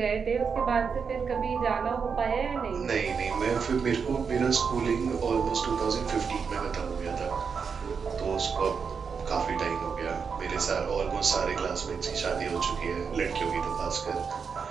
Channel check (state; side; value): quieter; left; 6.0 dB